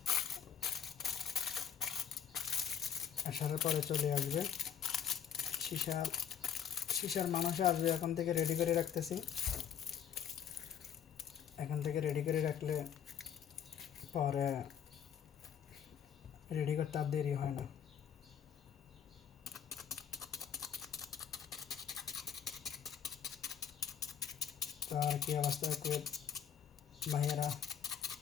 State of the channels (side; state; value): right; quieter; 8.5 dB